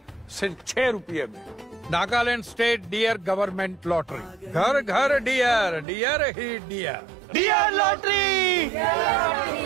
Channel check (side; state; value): left; drops out; at 5.9 s